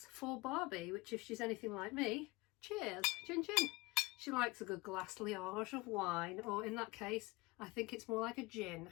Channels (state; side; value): quieter; right; 22.7 dB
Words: for Barbie, which if she's anything like me, cheers, chin chin. She likes a good glass liage of wine, or in that case I think it's more like a gin.